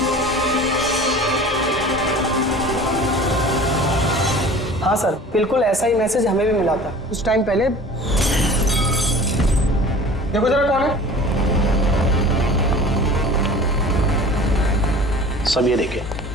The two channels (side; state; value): both; normal; correlation 0.43